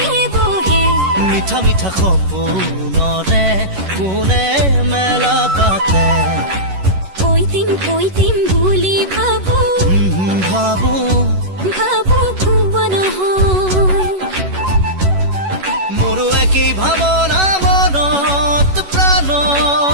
বহে মিঠা মিঠা সপোনৰে কোনে মেলা পাতে কৈ দিম বুলি ভাবো ভাবো ভুৱা নহয় মোৰো একেই ভাৱনা মনত প্ৰাণ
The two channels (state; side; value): late; left; 11 ms